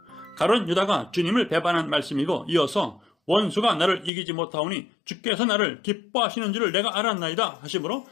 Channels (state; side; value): drops out; right; at 4.1 s